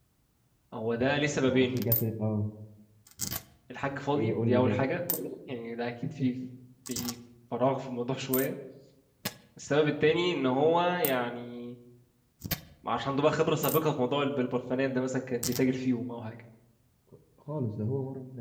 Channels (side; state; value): both; identical; correlation 1.00